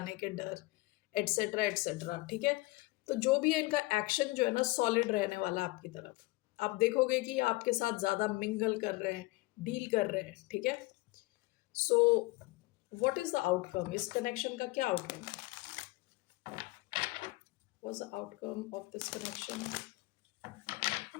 के डर एटसेट्रा एटसेट्रा। ठीक है। तो जो भी है इनका एक्शन जो है ना सॉलिड रहने वाला आपकी तरफ। आप देखोगे कि आपके साथ ज्यादा मिंगल कर रहे हैं डील कर रहे हैं। ठीक है। So what is the outcome. इस कनेक्शन का क्या आउटकम है। What's the outcome of this connection?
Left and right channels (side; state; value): right; quieter; 22.3 dB